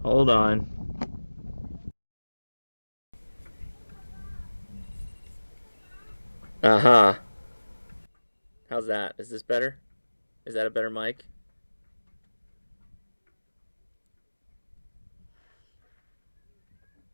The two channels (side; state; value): both; inverted; correlation -1.00